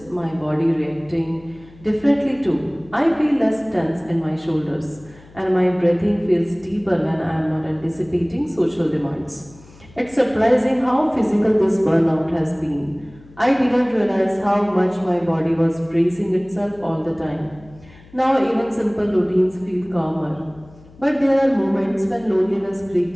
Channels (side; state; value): left; noise; hum, 24 dB below the sound